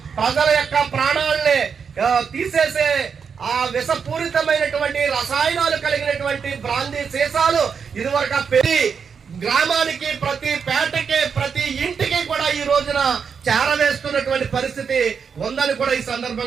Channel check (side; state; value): left; quieter; 6.3 dB